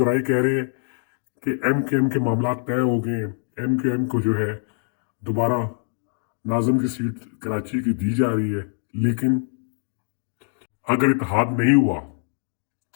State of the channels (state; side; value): silent; right; digital silence